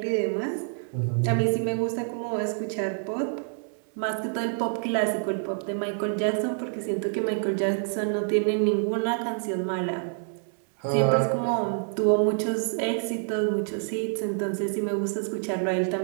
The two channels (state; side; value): silent; left; 60 dB below the other